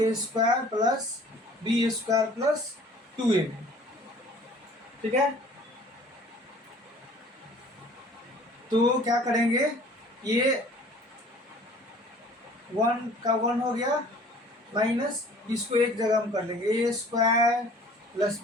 square plus B square plus 2ab, ठीक है। तो क्या करेंगे, ये 1 का 1 हो गया माइनस, इसको एक जगह हम कर लेंगे A square plus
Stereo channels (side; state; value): both; normal; correlation 0.51